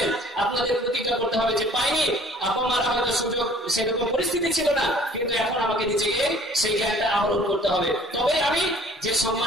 আপনাদের প্রতিজ্ঞা করতে হবে যে পাইনি, আপনারা হয়তো সুযোগ সেরকম পরিস্থিতি ছিল না, কিন্তু এখন আমাকে নিজেকে সেই জ্ঞানটা আহরণ করতে হবে। তবে আমি যে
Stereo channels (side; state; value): both; normal; correlation 0.53